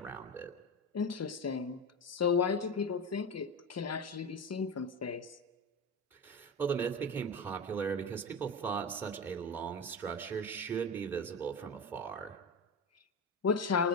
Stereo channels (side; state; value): both; normal; correlation 0.21